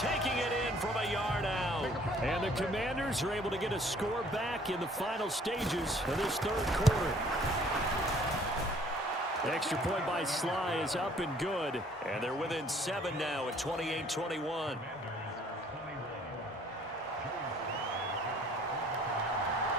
it in from a yard out. And the Commanders are able to get a score back in the final stages of this 3rd quarter. Extra point by Sly is up and good. And they're within 7 now at 28-21.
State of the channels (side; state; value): both; normal; correlation 0.58